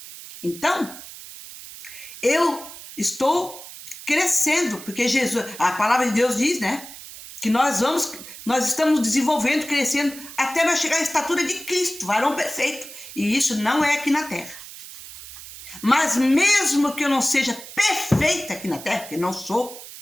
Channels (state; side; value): noise; right; hiss, 14 dB below the sound